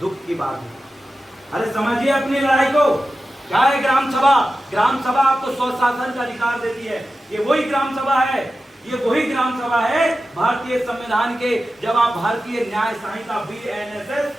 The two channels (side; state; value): both; normal; correlation 0.93